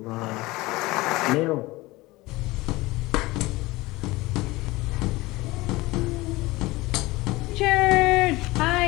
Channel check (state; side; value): quieter; right; 20.5 dB